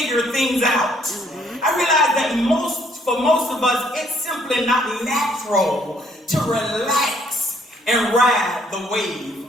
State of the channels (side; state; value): both; normal; correlation 0.65